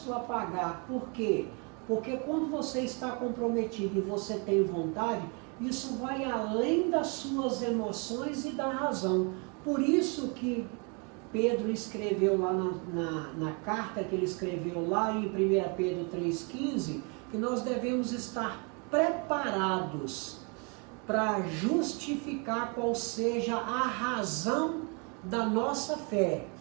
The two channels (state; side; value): quieter; left; 34.1 dB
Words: a pagar. Por quê? Porque quando você está comprometido e você tem vontade, isso vai além das suas emoções e da razão. Por isso que Pedro escreveu lá na carta que ele escreveu lá em 1 Pedro 3,15, que nós devemos estar preparados para justificar qual seja a razão da nossa fé.